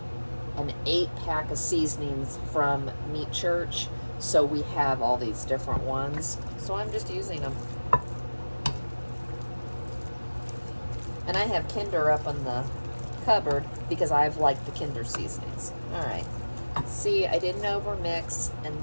an 8-pack of seasonings from Meat Church, so we have all these different ones. So I'm just using them. And I have Kinder up on the cupboard because I've liked the Kinder seasonings. All right. See, I didn't overmix, and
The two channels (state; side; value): inverted; both; correlation -1.00